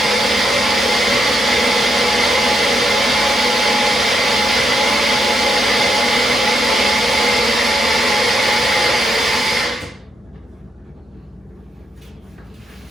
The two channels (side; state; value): both; normal; correlation 0.80